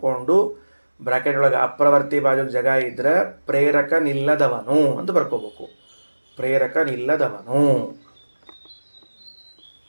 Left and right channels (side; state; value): both; inverted; correlation -1.00